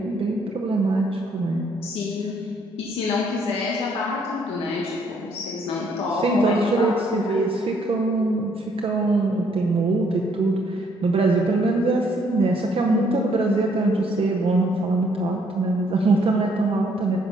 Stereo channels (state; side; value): normal; both; correlation 0.67